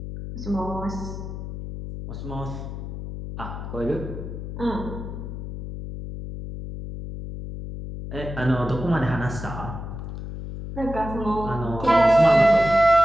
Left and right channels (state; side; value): noise; left; hum, 8 dB below the sound